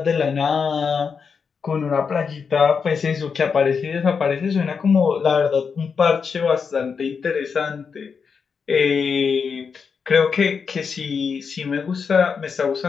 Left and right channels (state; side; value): quieter; right; 5.9 dB